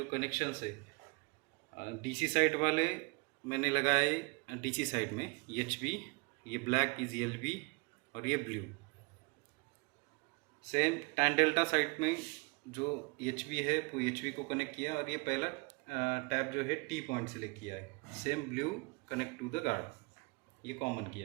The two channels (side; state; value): left; quieter; 29.3 dB